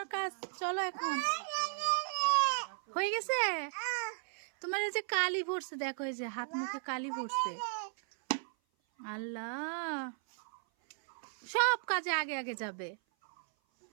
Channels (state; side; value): silent; left; 54 dB below the other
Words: কাজ, চলো এখন। হয়ে গেছে? তোমার এই যে কালি পড়ছে, দেখো এই যে হাত মুখে কালি পড়ছে। আল্লাহ, সব কাজে আগে আগে যাবে